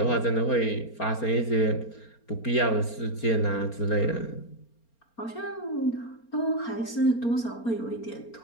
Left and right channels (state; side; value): late; right; 4.3 ms